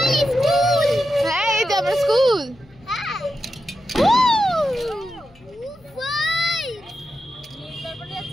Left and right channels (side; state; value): left; noise; hum, 28 dB below the sound